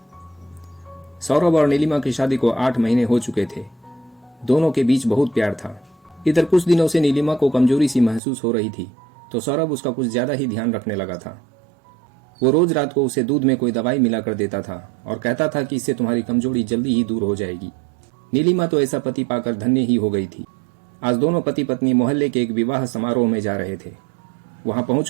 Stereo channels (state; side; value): drops out; left; at 8.2 s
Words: सौरभ और नीलिमा की शादी को 8 महीने हो चुके थे। दोनों के बीच बहुत प्यार था। इधर कुछ दिनों से नीलिमा को कमजोरी सी महसूस हो रही थी तो सौरभ उसका कुछ ज्यादा ही ध्यान रखने लगा था। वो रोज रात को उसे दूध में कोई दवाई मिला कर देता था और कहता था कि इससे तुम्हारी कमजोरी जल्दी ही दूर हो जाएगी। नीलिमा तो ऐसा पति पाकर धन्य ही हो गई थी। आज दोनों पति पत्नी मोहल्ले के एक विवाह समारोह में जा रहे थे। वहां